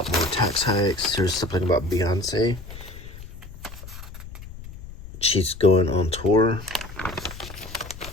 more tax hikes. There's something about Beyonce. She's going on tour.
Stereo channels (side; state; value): left; noise; rumble, 14 dB below the sound